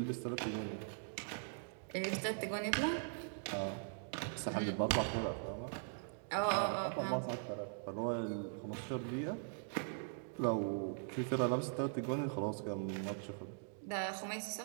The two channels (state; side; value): silent; left; digital silence